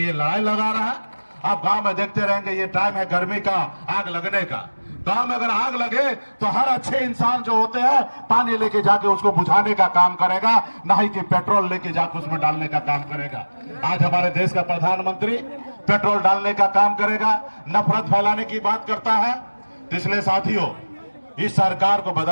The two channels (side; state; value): both; inverted; correlation -1.00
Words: लड़ाई लगा रहा है। आप गांव में देखते रहेंगे, ये टाइम है गर्मी का, आग लगने का। गांव में अगर आग लगे तो हर अच्छे इंसान जो होते हैं पानी लेके जाके उसको बुझाने का काम करेगा, ना ही कि पेट्रोल लेके जाके उसमें डालने का काम करेगा। आज हमारे देश का प्रधानमंत्री पेट्रोल डालने का काम करेगा, नफरत फैलाने की बात करता है। तो इसलिए साथियों, इस सरकार को